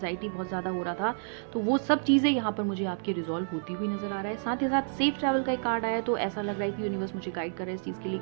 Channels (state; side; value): silent; left; 57 dB below the other